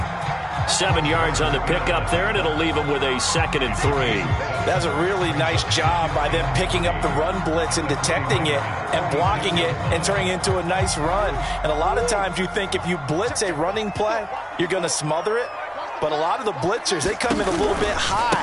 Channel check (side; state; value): both; identical; correlation 1.00